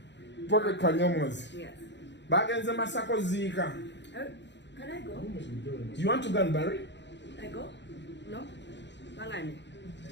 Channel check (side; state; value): right; late; 0.52 ms